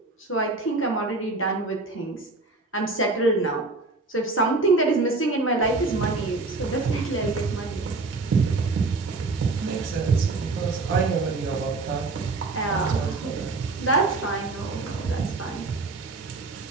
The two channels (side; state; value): left; quieter; 3.5 dB